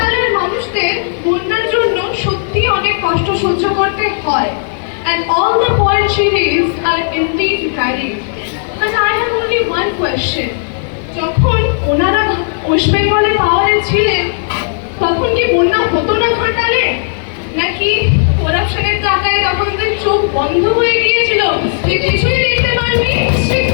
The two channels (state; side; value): silent; right; digital silence